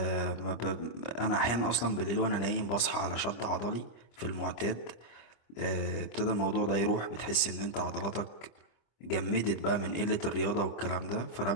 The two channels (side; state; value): right; late; 25 ms